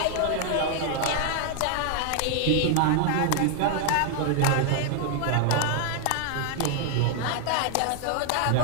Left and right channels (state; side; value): different; both; correlation 0.00